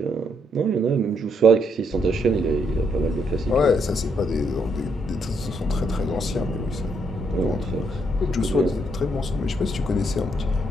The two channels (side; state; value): both; normal; correlation 0.74